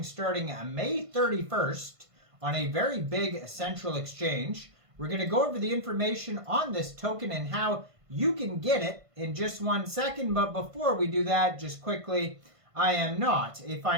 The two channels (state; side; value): late; left; 1.5 ms